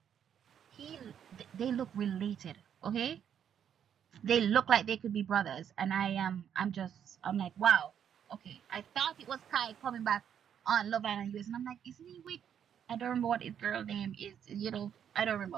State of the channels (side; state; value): left; quieter; 8.8 dB